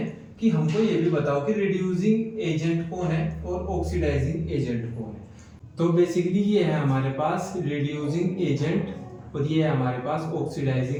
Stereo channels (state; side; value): identical; both; correlation 1.00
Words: कि हमको ये भी बताओ कि रिड्यूसिंग एजेंट कौन है और ऑक्सीडाइजिंग एजेंट कौन है। तो बेसिकली ये है हमारे पास रिड्यूसिंग एजेंट और ये है हमारे पास